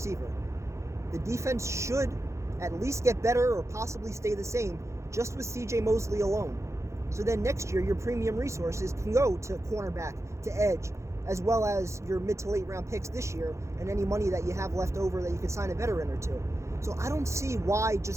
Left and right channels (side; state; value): left; late; 0.14 ms